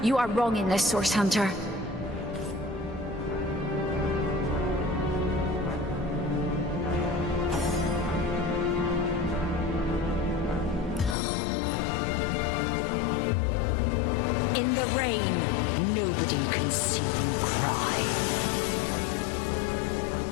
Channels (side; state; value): right; drops out; at 11.2 s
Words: you are wrong in this, Source Hunter.